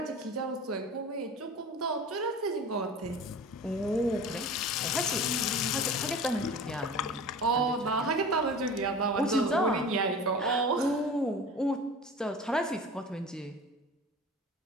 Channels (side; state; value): both; normal; correlation 0.37